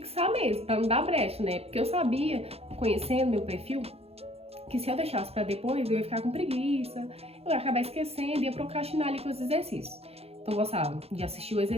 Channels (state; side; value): late; left; 0.29 ms